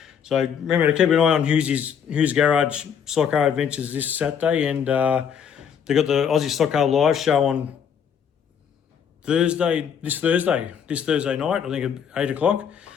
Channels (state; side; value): quieter; right; 7.7 dB